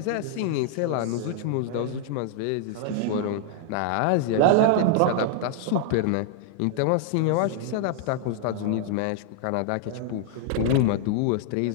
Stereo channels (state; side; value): different; both; correlation -0.01